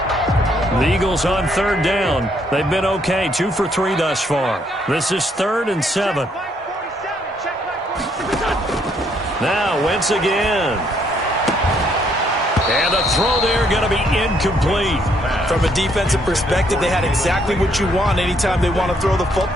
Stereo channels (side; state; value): both; normal; correlation 0.70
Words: The Eagles on third down. They've been okay, 2 for 3 thus far. This is 3rd and 7. Now Wentz again. And the throw there going to be incomplete. From a defensive perspective, they had exactly what you want anytime they want to throw the